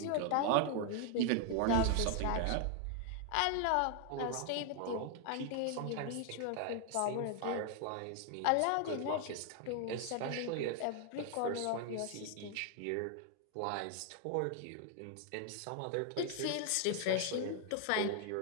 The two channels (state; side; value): different; both; correlation 0.00